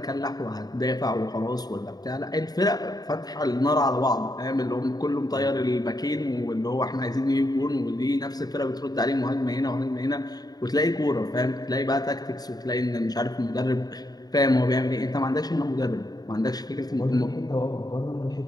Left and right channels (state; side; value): late; right; 0.19 ms